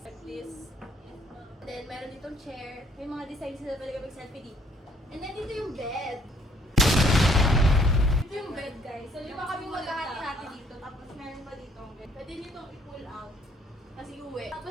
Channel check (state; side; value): normal; both; correlation 0.64